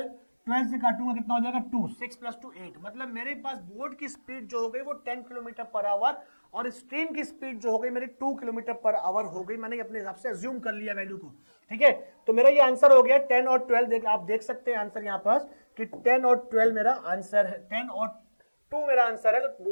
12 से काटूंगा कितना हो जाएगा 2, 6 प्लस 2 8, मतलब मेरे पास बोट की स्पीड जो हो गई वो 10 किलोमीटर पर आवर और स्ट्रीम की स्पीड जो हो गई मेरी 2 किलोमीटर पर आवर हो गई। मैंने अपने हिसाब से अज्यूम कर लिया वैल्यू को। ठीक है, तो मेरा ये आंसर हो गया 10 और 12। आप देख सकते हैं आंसर यहां पास कि 10 और 12 मेरा आंसर है, 10 और 2 मेरा आंसर है, तो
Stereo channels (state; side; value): inverted; both; correlation -1.00